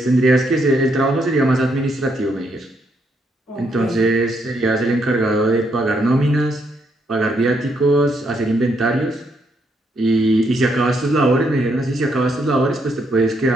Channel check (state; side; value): normal; both; correlation 0.75